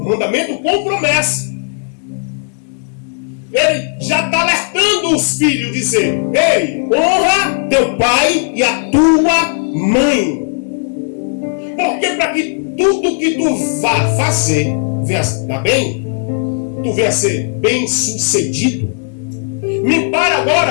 mandamento com promessa. Ele já está alertando os filhos, dizer: ei, honra teu pai e a tua mãe. Porque para que tudo que tu vá fazer venha dar bem, tu venha ser bem sucedido. Me para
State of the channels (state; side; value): silent; right; 64 dB below the other